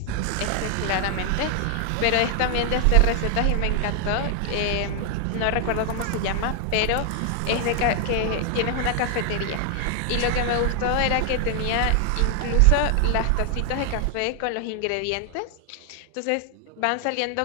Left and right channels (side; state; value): both; different; correlation 0.00